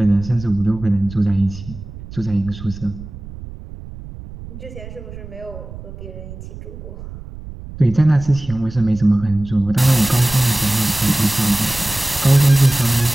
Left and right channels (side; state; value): right; noise; rumble, 14 dB below the sound